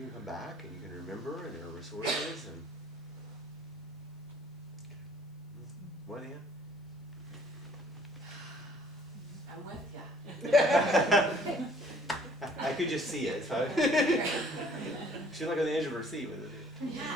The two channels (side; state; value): both; normal; correlation 0.57